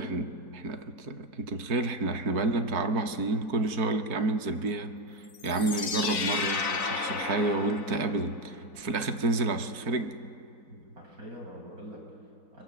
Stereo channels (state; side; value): late; left; 4.0 ms